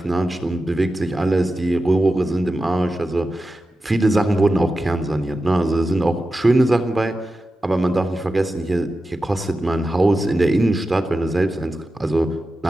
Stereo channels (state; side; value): normal; both; correlation 0.92